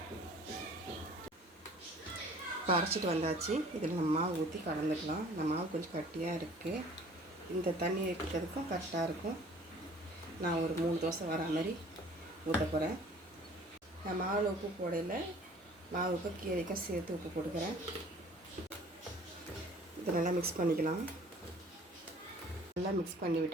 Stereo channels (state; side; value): normal; both; correlation 0.51